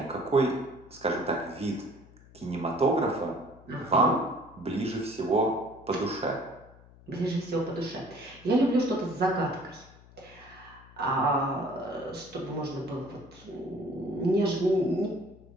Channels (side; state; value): left; noise; hum, 23 dB below the sound